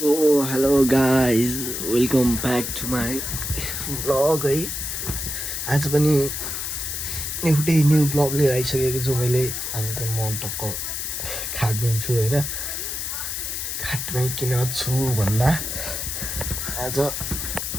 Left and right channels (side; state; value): left; noise; hiss, 4 dB below the sound